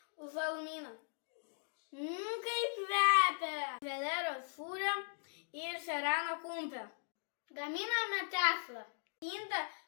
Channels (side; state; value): right; silent; digital silence